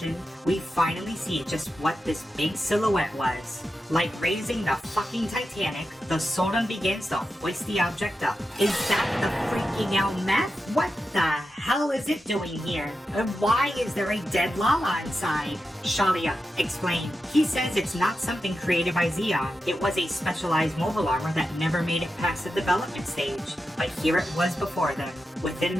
we finally see just what this big silhouette was. Like raising the fucking Titanic, the Soren begins to hoist the object up. Is that the freaking out meth? What the hell is it doing here? And why is there a dead Lala inside? Shalia, explain. He says it's not something created by Zeon. It was a specialized mobile armor that never made it past the development stage. But here it was before them. Within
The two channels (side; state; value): both; normal; correlation 0.90